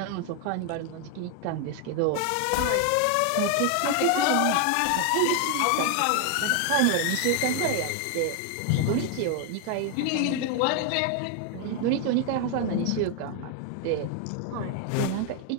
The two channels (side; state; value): both; different; correlation 0.00